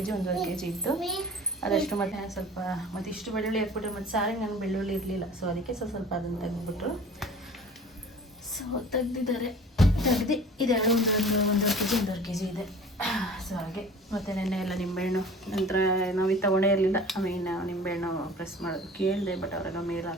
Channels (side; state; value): both; normal; correlation 0.43